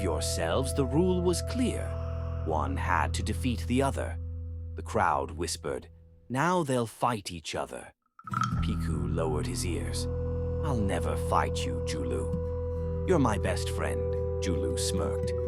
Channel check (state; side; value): identical; both; correlation 1.00